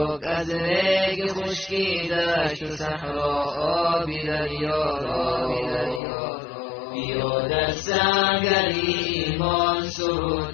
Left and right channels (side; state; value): right; drops out; at 6.0 s